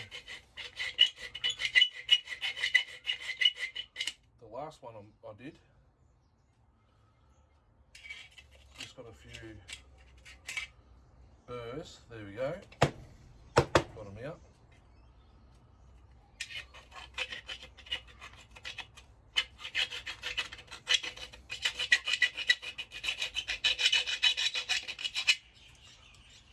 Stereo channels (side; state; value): both; identical; correlation 1.00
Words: the last one I did. Just got a few burrs. There we go. Got them out.